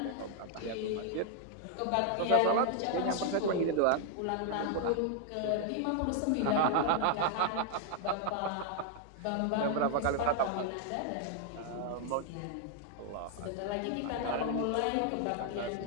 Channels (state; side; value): different; both; correlation 0.00